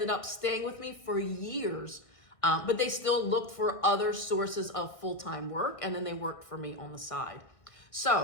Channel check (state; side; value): late; right; 1.6 ms